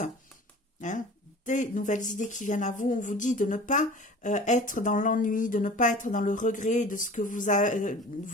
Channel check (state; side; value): normal; both; correlation 0.42